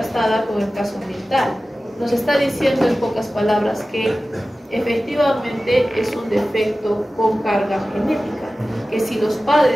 con el caso ambiental. Nos está diciendo en pocas palabras que efectivamente es un defecto con carga genética, que si los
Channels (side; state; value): both; normal; correlation 0.96